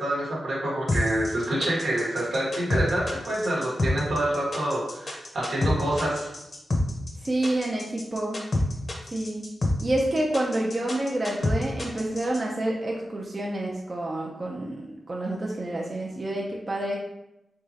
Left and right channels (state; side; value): normal; both; correlation 0.91